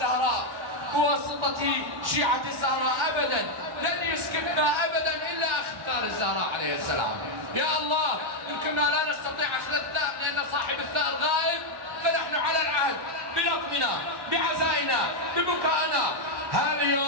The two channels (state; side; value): late; left; 1.1 ms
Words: بواسطة شيعة الزهراء ابدا، لن يسكتنا ابدا الا اختار الزهراء عليه السلام. يا الله ان كنا لا نستطيع اخذ الثأر لان صاحب الثأر غائب، فنحن على العهد بلطمنا بعزائنا ببكائنا.